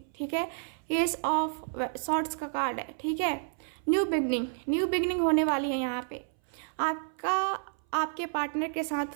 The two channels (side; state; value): left; silent; 58 dB below the other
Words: ठीक है। एस ऑफ सॉर्ड्स का कार्ड है, ठीक है। न्यू बिगनिंग होने वाली है यहाँ पे। आपके पार्टनर के साथ